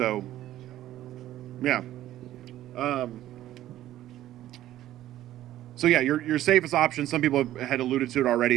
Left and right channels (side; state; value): left; quieter; 13.6 dB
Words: yeah. So yeah, your safest option, some people had alluded to it